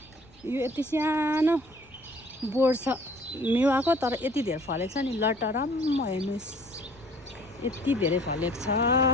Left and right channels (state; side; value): noise; left; rumble, 28 dB below the sound